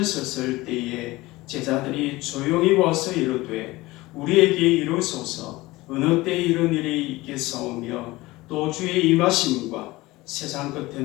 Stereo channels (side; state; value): right; quieter; 19.9 dB